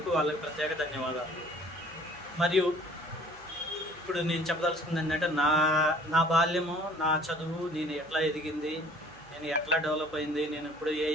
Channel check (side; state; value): right; noise; hum, 24 dB below the sound